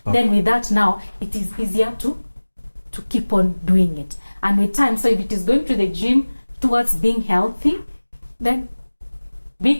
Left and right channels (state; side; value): inverted; both; correlation -1.00